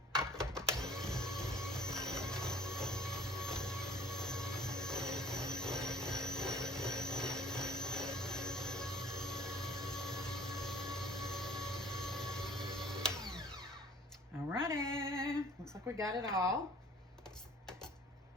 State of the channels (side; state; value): both; normal; correlation 0.52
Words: Alrighty, looks like we got it all.